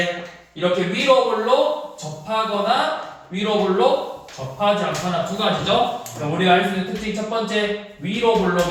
이렇게 위로 볼록 접하거나 위로 볼록 접하지 않거나 두 가지죠. 그럼 우리가 알 수 있는 특징 첫 번째 위로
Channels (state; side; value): identical; both; correlation 1.00